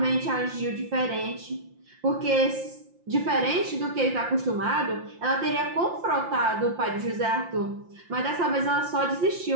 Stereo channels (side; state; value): left; late; 5.7 ms